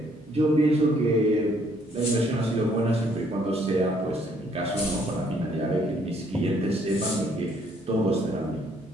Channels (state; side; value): normal; both; correlation 0.66